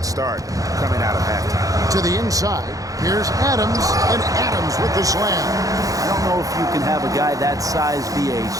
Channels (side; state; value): left; late; 0.17 ms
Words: start coming out of halftime. To the inside. Here's Adams, and Adams with the slam. I don't know if you can have a guy that size be a